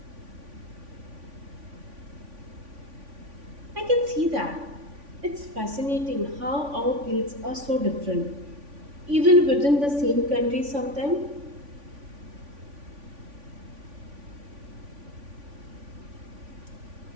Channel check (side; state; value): left; late; 3.5 ms